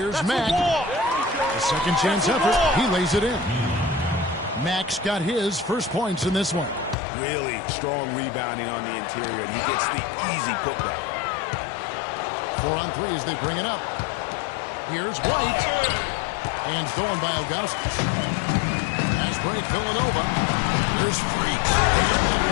Mack. A second chance effort. He lays it in. Mack's got his first points in this one. Really strong rebounding on the interior, and he gets the easy putback. 4 on 3 as they bring it up. Here's White. And stolen by Ilgauskas. Pass break, Villanova. Here's Freak. And that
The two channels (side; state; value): right; drops out; at 7.0 s